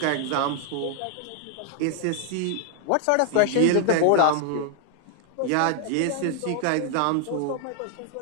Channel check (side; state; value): both; different; correlation 0.00